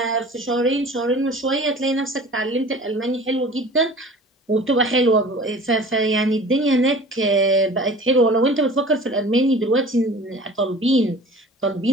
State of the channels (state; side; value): normal; both; correlation 0.43